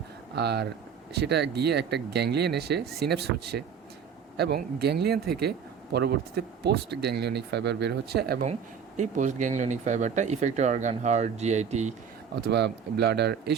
আর সেটা গিয়ে একটা গ্যাংলিয়ন এসে সিনেপস হচ্ছে, এবং গ্যাংলিয়ন থেকে পরবর্তীতে পোস্ট গ্যাংলিওনিক ফাইবার বের হচ্ছে, এবং এই পোস্ট গ্যাংলিওনিক ফাইবারটা ইফেক্টর অর্গান, হার্ট, জিআইটি অথবা ব্লাডার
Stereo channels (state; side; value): quieter; left; 7.1 dB